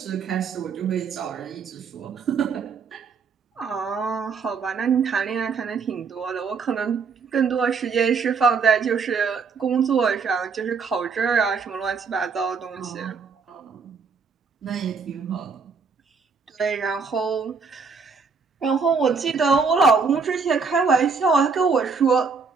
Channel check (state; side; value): quieter; left; 5.2 dB